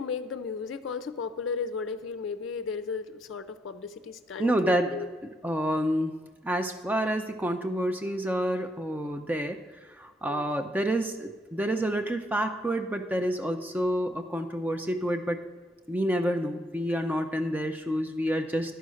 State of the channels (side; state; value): both; normal; correlation 0.74